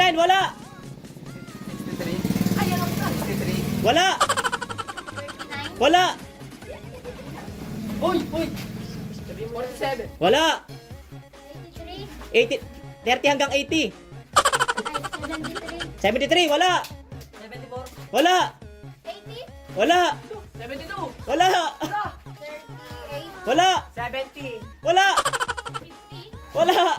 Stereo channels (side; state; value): both; identical; correlation 1.00